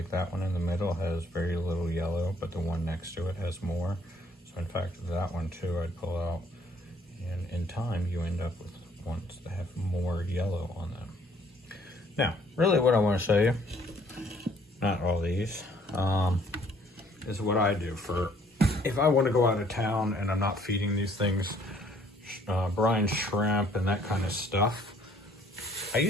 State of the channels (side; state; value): both; normal; correlation 0.61